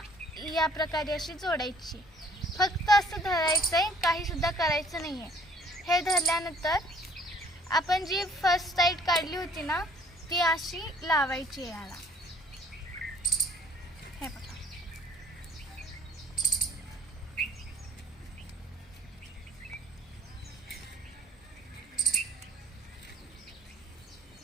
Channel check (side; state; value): both; normal; correlation 0.56